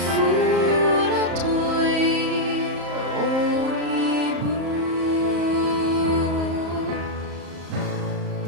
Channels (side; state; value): left; late; 34 ms